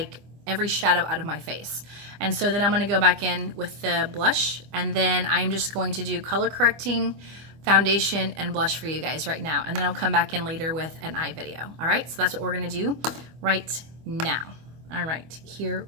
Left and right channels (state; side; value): late; left; 25 ms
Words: every shadow out of my face. And so then I'm going to go back in with the blush, and then I'm just going to do color correcting, foundation, and blush for you guys right now. And then I'll come back in later with an eye video. All right, so that's what we're going to do right now. All right, here